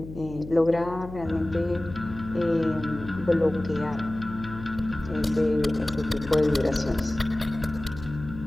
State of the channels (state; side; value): noise; left; hum, 13 dB below the sound